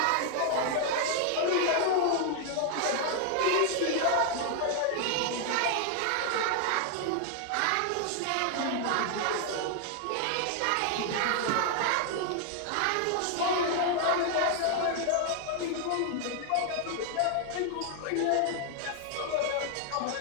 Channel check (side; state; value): both; different; correlation 0.00